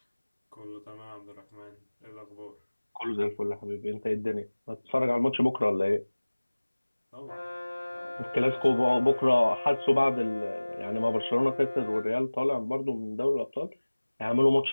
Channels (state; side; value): inverted; both; correlation -1.00